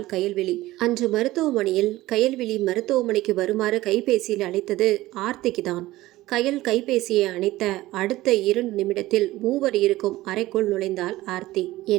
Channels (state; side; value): quieter; left; 17.2 dB